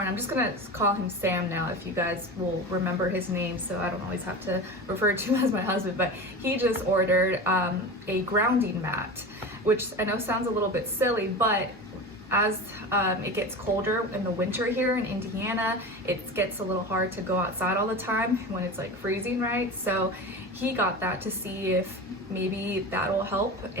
I'm just gonna call him Sam now if you guys will remember his name so I don't always have to refer to him as my husband, but he just ordered a grounding mat, which I know sounds a little bit silly, but as it gets colder in the winter here in Indiana, it gets a little hard to go outside all the time when it's like freezing, right? So he got that to see if maybe that'll help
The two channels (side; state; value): both; normal; correlation 0.29